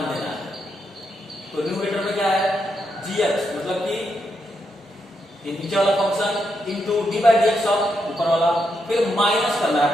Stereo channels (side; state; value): both; normal; correlation 0.81